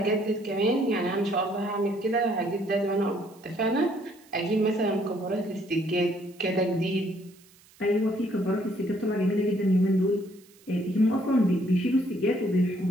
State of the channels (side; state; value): right; noise; hiss, 27 dB below the sound